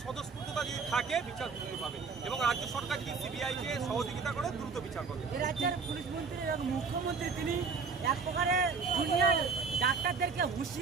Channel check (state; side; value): quieter; left; 5.0 dB